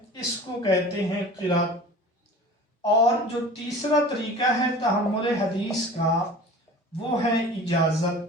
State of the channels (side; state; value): both; normal; correlation 0.40